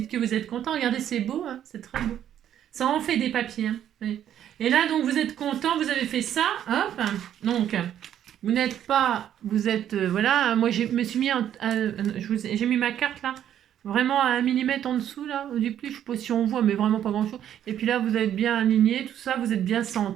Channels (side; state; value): left; quieter; 10.4 dB